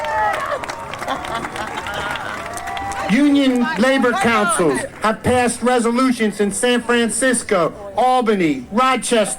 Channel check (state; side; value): identical; both; correlation 1.00